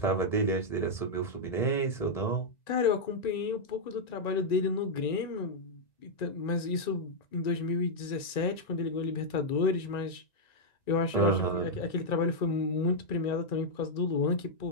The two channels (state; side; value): late; right; 1.9 ms